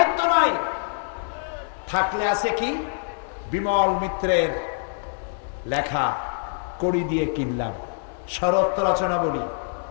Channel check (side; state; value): right; silent; digital silence